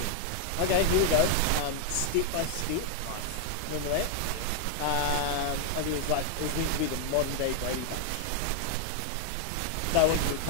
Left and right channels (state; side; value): different; both; correlation 0.00